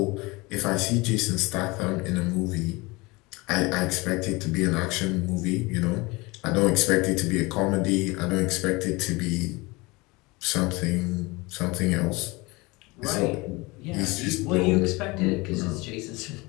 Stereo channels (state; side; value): quieter; right; 24.0 dB